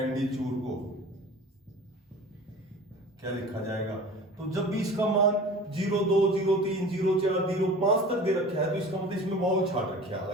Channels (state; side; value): normal; both; correlation 0.40